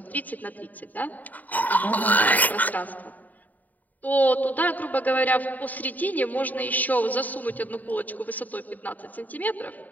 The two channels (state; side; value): late; right; 0.080 ms